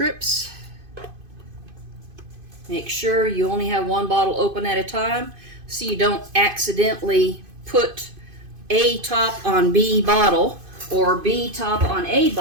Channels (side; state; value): left; late; 2.5 ms